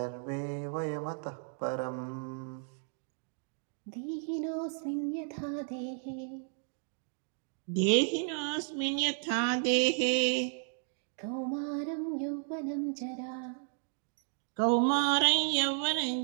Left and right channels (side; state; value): left; silent; 55 dB below the other